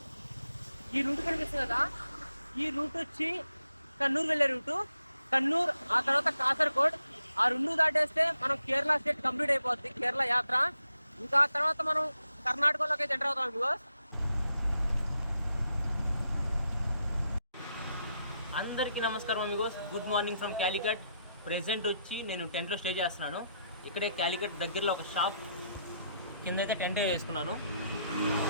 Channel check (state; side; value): inverted; both; correlation -0.80